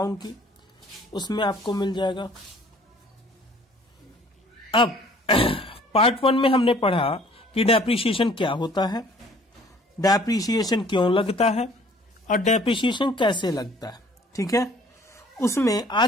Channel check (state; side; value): normal; both; correlation 0.55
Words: की, उसमें आपको मिल जाएगा। अब पार्ट 1 में हमने पढ़ा कि डेप्रिसिएशन क्या होता है, डेप्रिसिएशन क्यों लगता है और डेप्रिसिएशन कैसे लगता है, ठीक है। उसमें